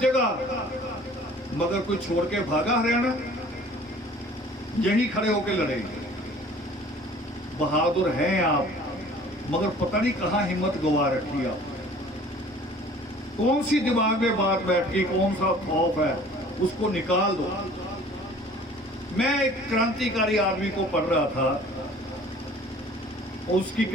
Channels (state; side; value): normal; both; correlation 0.50